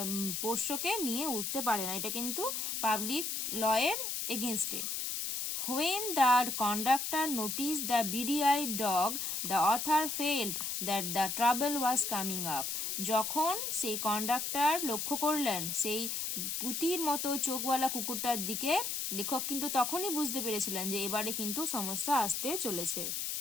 পোষ্যকে নিয়ে উঠতে পারে না, এটা কিন্তু পাবলিক লয়ের এগেনস্টে। When the conductor noticed the beady-eyed dog, the author felt that the trouble was coming up. যখন সেই কন্ডাক্টর লক্ষ্য করলেন সেই পুতির মতো চোখওয়ালা কুকুরটার দিকে, লেখক কিন্তু তখনই বুঝতে পেরেছিলেন যে এবারে কিন্তু সমস্যা আসতে চলেছে।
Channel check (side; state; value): left; noise; hiss, 2 dB below the sound